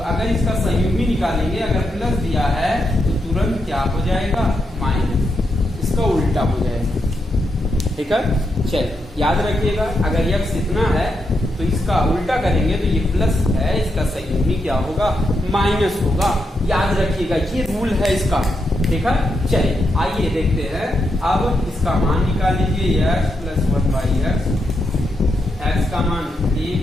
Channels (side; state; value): both; normal; correlation 0.83